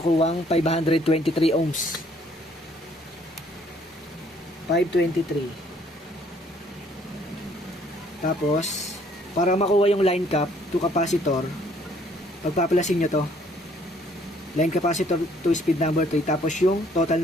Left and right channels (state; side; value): normal; both; correlation 0.62